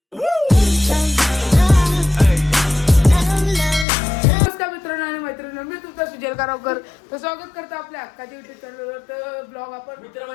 मित्रांनो आणि मैत्रिणी मी तुमचा सुजल कारवकर तर स्वागत करतो आपल्या हक्काच्या युट्यूब चॅनलवर. तर ब्लॉग आपण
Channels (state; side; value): drops out; right; at 3.9 s